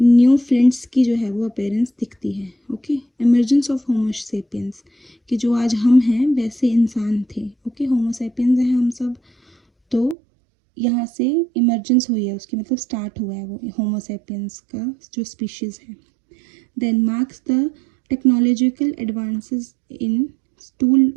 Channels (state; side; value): drops out; left; at 10.2 s